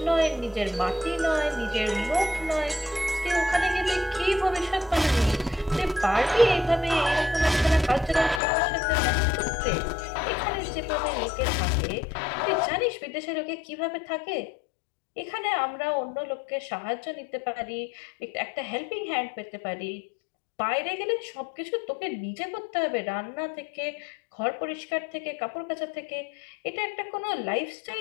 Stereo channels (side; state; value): right; drops out; at 8.4 s